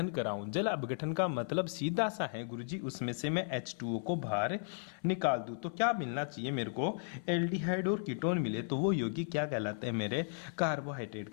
कराऊं। जल अपघटन का मतलब सीधा सा है गुरुजी, उसमें से मैं H2O को बाहर निकाल दूं। तो क्या मिलना चाहिए मेरे को? एल्डिहाइड और कीटोन मिले तो वो यौगिक क्या कहलाते हैं मेरे? कार्बोहाइड्रेट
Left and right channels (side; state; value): right; silent; 54 dB below the other